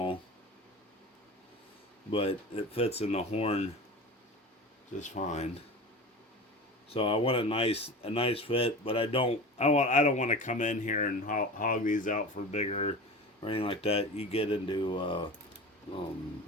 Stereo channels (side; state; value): both; normal; correlation 0.33